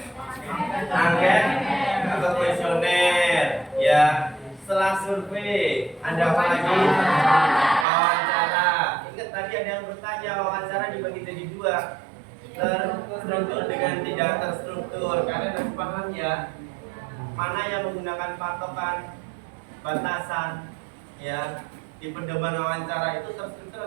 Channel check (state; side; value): drops out; left; at 7.9 s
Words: Angket atau kuesioner. Ya, setelah survei, ada apa lagi? Wawancara. Ingat tadi ada yang bertanya, wawancara dibagi jadi dua. Terstruktur dengan tidak terstruktur. Kalian harus paham ya, mana yang menggunakan patokan batasan ya di pedoman wawancara itu terstruktur